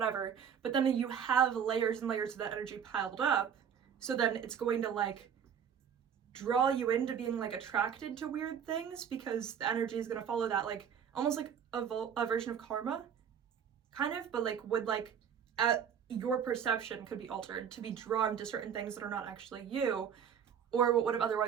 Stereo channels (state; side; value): quieter; left; 7.9 dB